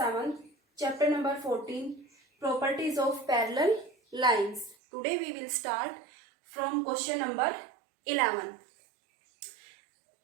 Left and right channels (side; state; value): left; drops out; at 4.8 s